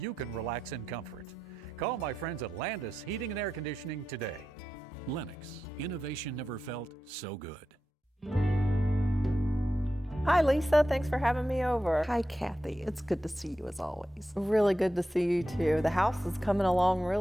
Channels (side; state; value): both; normal; correlation 0.90